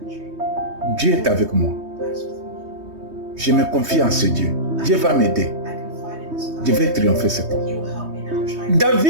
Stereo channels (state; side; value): late; left; 3.2 ms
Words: Dieu est avec moi. God's with me. Je me confie en ce Dieu. Dieu va m'aider. I confide in this God. Je vais triompher cet homme. He will help me now try to